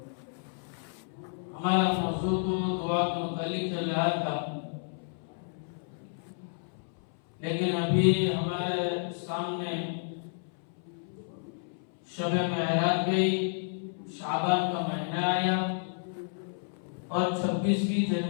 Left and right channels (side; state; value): right; silent; 57 dB below the other